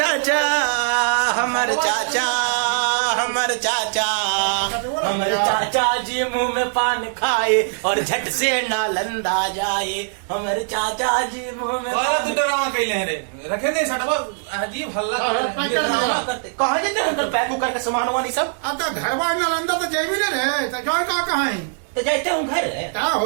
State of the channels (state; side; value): silent; left; 65 dB below the other